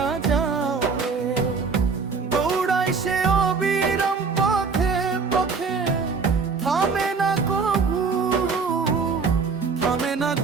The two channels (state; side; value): quieter; left; 5.0 dB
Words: যাও রে। দৌড়াই সে অবিরাম পথে পথে, থামে না কভু, থামে না